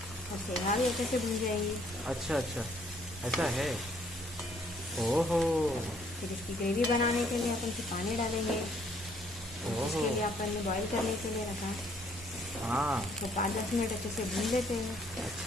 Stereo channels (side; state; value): right; noise; rumble, 19 dB below the sound